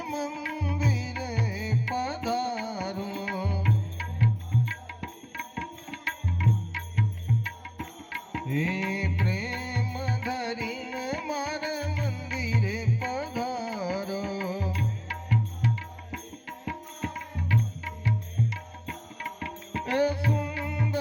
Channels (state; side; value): identical; both; correlation 1.00